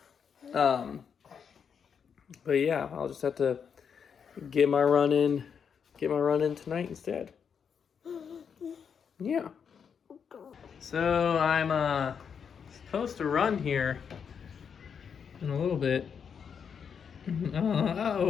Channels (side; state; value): right; quieter; 6.9 dB